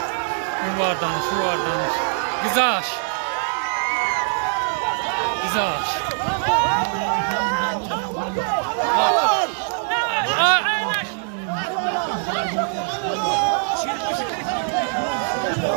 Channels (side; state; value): left; silent; 64 dB below the other